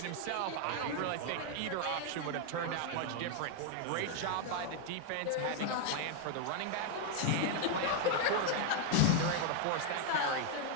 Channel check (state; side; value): different; both; correlation 0.00